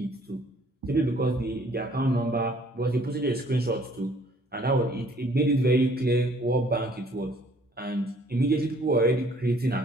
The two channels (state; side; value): normal; both; correlation 0.59